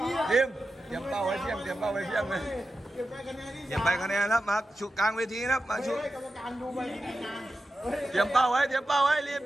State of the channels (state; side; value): normal; both; correlation 0.91